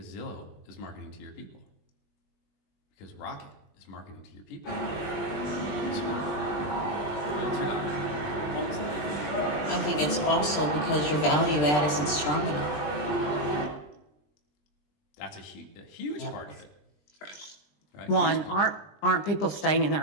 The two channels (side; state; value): right; late; 20 ms